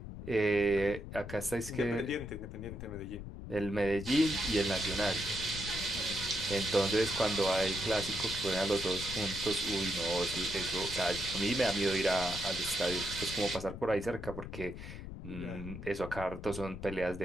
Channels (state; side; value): noise; left; rumble, 10 dB below the sound